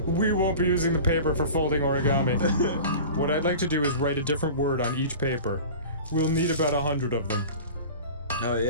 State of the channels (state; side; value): inverted; both; correlation -0.37